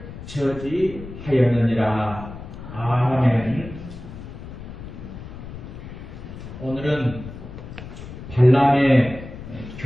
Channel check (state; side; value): noise; left; rumble, 12 dB below the sound